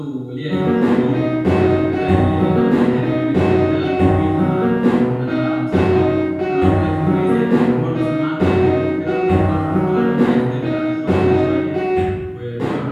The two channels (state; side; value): identical; both; correlation 1.00